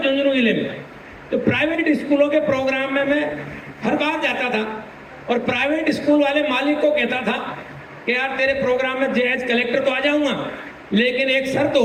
झुंझुनू जिले में, तो प्राइवेट स्कूलों के प्रोग्राम में मैं हर बार जाता था और प्राइवेट स्कूल वाले मालिक को कहता था कि यार तेरे प्रोग्राम में एज कलेक्टर तो आ जाऊंगा, लेकिन एक शर्त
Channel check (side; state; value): both; identical; correlation 1.00